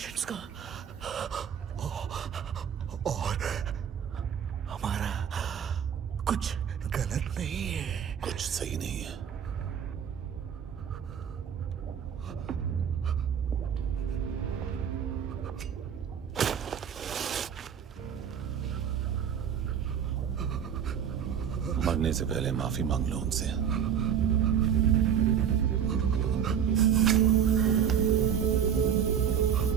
का, और हमारा कुछ गलत नहीं है, कुछ सही नहीं है। मरने से पहले माफी मांग लो उनसे।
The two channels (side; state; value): left; quieter; 8.3 dB